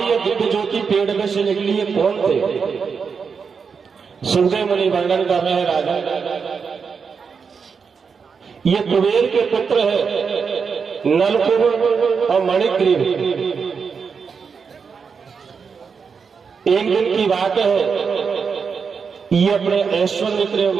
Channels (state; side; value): quieter; left; 5.8 dB